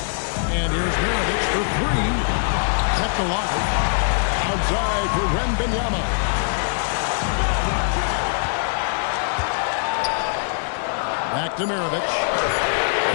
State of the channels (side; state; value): right; silent; 64 dB below the other